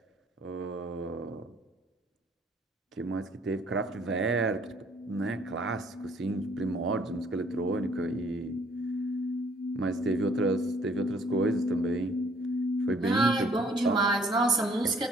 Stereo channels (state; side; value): normal; both; correlation 0.61